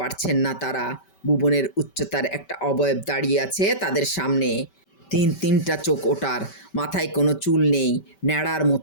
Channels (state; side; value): late; right; 5.2 ms